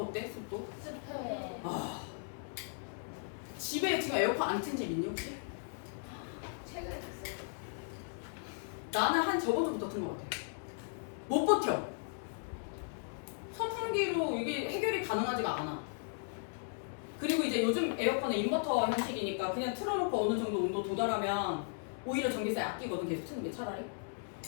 습도? 습해. 아 집에 지금 에어컨 안 튼 집 있니 혹시? 최근에 됐어요. 나는 한 저번 주부터 튼 것 같아. 못 버텨. 선풍기로 이게 해결이 가능하지가 않아. 그리고 이제 요즘 에어컨은 인버터 형식이니까 그냥 틀어놓고 어느 정도 온도 도달하면 오히려 전기세 아끼거든, 계속 트는 게 차라리.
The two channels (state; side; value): silent; right; 53 dB below the other